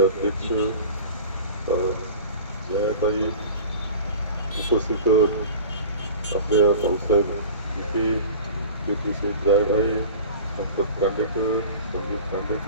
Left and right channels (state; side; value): inverted; both; correlation -0.38